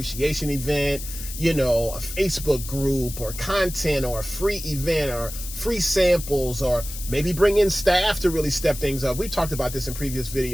event, you know, a Facebook group or content or a free event or free samples, or maybe bring in staff to really step things up. We talked about this in previous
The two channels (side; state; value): left; noise; hiss, 10 dB below the sound